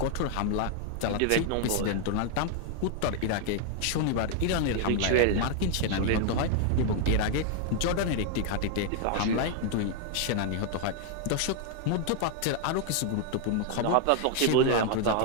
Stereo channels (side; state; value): both; different; correlation 0.00